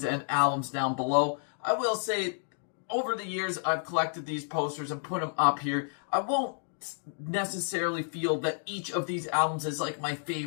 and albums down below. I will say, over the years, I've collected these posters and put them up here. I won't necessarily feel that each of these albums is like my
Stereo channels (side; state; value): right; silent; digital silence